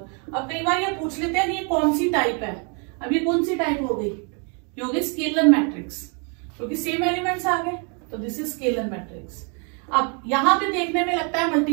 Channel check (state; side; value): quieter; left; 37.1 dB